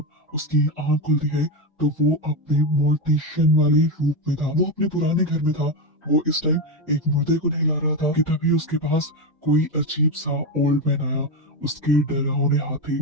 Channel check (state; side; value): normal; both; correlation 0.12